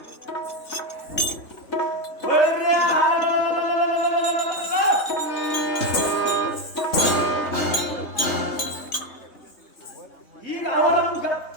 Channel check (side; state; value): right; late; 3.5 ms